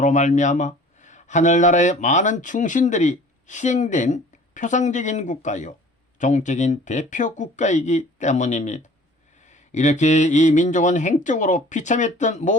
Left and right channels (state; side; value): normal; both; correlation 0.48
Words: 말미암아 하늘나라의 많은 충신들이 희생된 표상적인 국가요 종적인 대표 국가이기 때문입니다. 이렇게 이 민족은 행적으로 비참했던